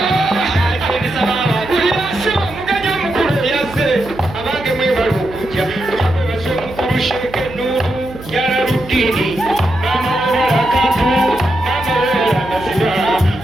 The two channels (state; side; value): noise; right; hum, 15 dB below the sound